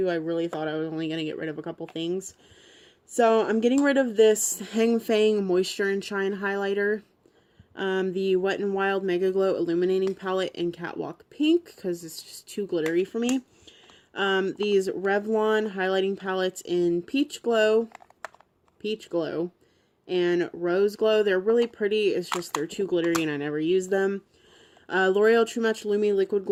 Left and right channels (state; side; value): identical; both; correlation 1.00